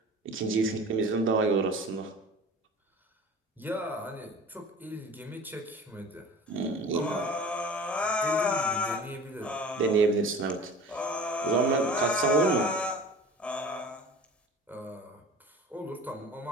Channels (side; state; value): both; normal; correlation 0.40